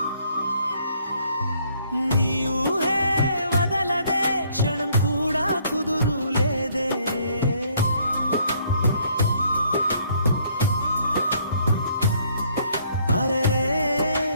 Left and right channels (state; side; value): inverted; both; correlation -0.66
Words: నీ ఊహే వదలదే, క్షణం కూడా కుదురు లేదే. అరే